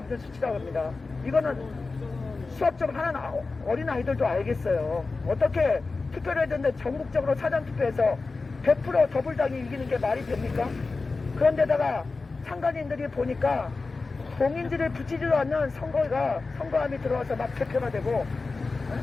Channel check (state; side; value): quieter; right; 3.9 dB